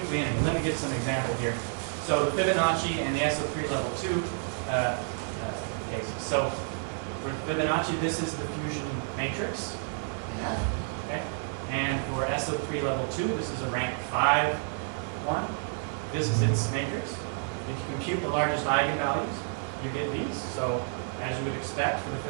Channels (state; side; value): silent; left; 58 dB below the other